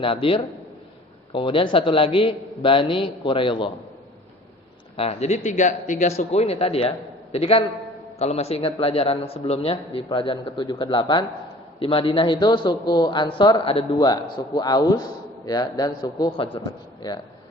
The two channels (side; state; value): both; normal; correlation 0.48